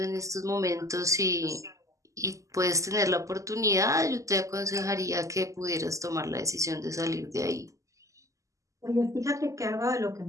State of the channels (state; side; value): late; left; 0.16 ms